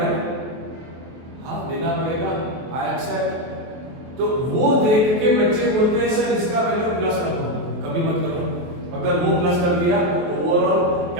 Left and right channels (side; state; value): left; late; 23 ms